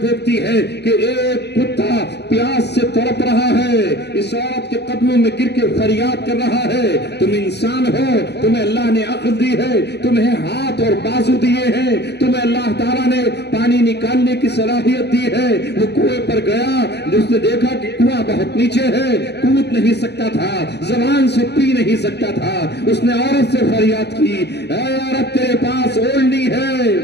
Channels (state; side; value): late; right; 0.49 ms